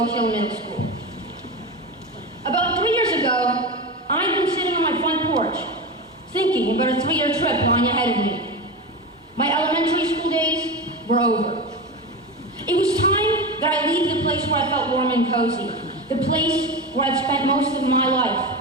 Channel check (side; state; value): both; normal; correlation 0.22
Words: Hill Middle School. About 3 years ago, I'd been sitting on my front porch, thinking about a 3-year trip lying ahead of me. My elementary school days were over. It was time that I leave the place where I felt warm and cozy, the place where I'd spent most of my life,